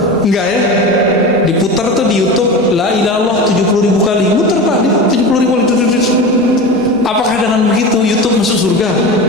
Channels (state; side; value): normal; both; correlation 0.28